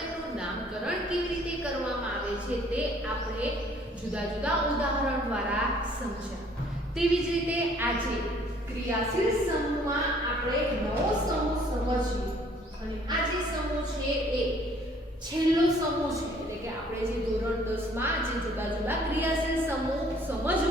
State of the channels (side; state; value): both; normal; correlation 0.59